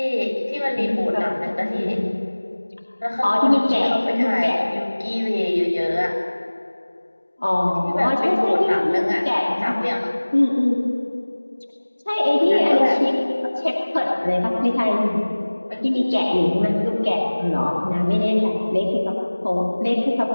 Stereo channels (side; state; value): both; inverted; correlation -1.00